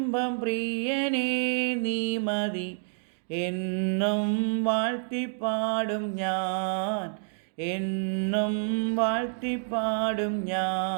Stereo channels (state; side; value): silent; left; digital silence